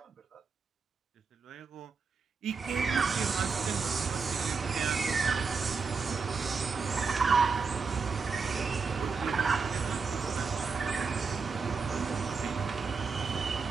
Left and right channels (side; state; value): left; quieter; 5.0 dB